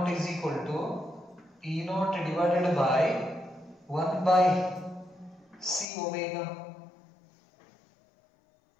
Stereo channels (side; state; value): right; drops out; at 5.9 s